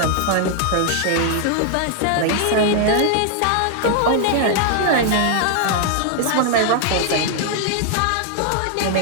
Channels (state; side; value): different; both; correlation 0.00